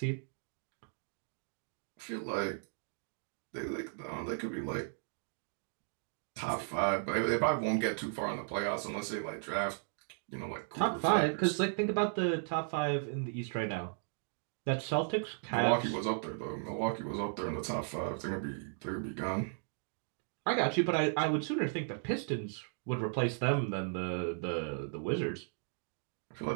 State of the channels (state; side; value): silent; left; digital silence